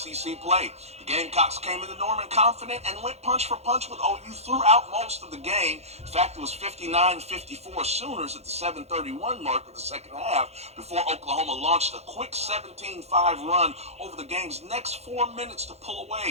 play. The Gamecocks came into Norman confident and went punch for punch with OU throughout most of the game. In fact, it was 59-54 Sooners at the 7:31 mark of the second half before Oklahoma launched a quick 17-5 run over the game's next 4 minutes to pull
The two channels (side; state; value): left; late; 0.31 ms